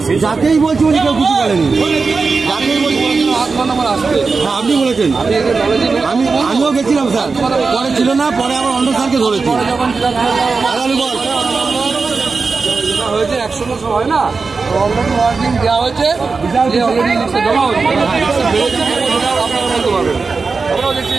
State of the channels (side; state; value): left; quieter; 4.5 dB